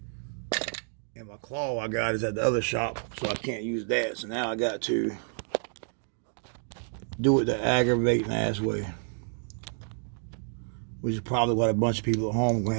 And my claw I got is at the other shop, so I can't use that. So now I got to do it the aggravating ass way, which is probably what a bunch of people at home are gonna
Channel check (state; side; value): silent; left; 58 dB below the other